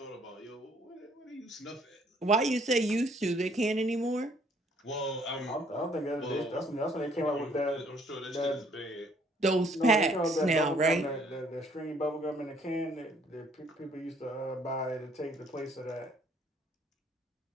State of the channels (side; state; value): both; normal; correlation 0.62